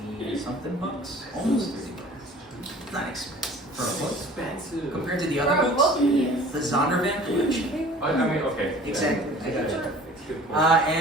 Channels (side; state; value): both; normal; correlation 0.46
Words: 20 something bucks, almost 30 bucks. Not expensive for a book. Expensive. Compared to the other books, the Zondervan collection. I mean, okay. Exactly. I got it. It's a good point.